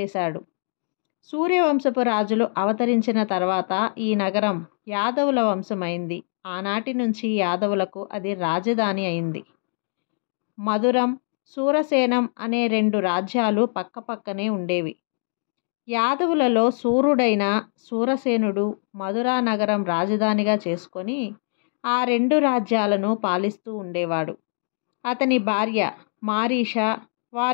సూర్యవంశపు రాజులు అవతరించిన తర్వాత ఈ నగరం యాదవుల వంశమైంది. ఆనాటి నుంచి యాదవులకు అది రాజధాని అయింది. మధురం, సూరసేనం అనే 2 రాజ్యాలు పక్కపక్కనే ఉండేవి. యాదవులలో సూర్యుడైన సూరసేనుడు మధురా నగరం రాజధానిగా చేసుకొని ఆ 2 రాజ్యాలను పాలిస్తూ ఉండేవాడు. అతని భార్య మారీష,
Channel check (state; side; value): silent; right; digital silence